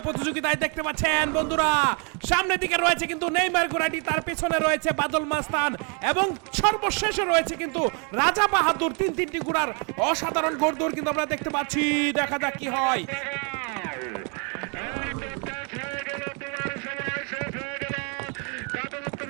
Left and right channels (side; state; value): left; quieter; 36.4 dB